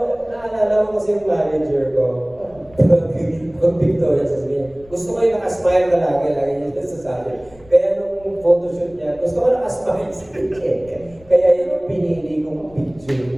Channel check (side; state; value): left; noise; rumble, 25 dB below the sound